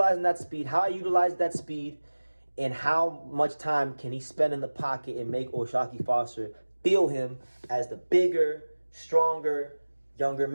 that speed, how I utilize that speed, and how much time can he spend in the pocket and make O'Shaquie Foster feel him as the bigger, stronger, younger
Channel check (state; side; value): inverted; both; correlation -1.00